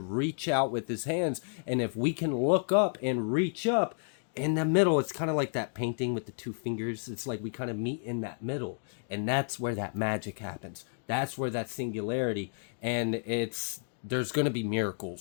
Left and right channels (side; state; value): right; silent; digital silence